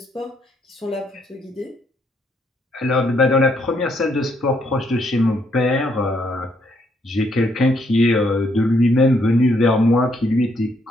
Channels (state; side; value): normal; both; correlation 0.73